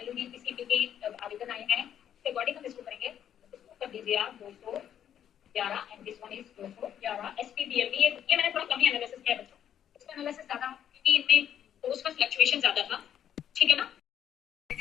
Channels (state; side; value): quieter; right; 9.7 dB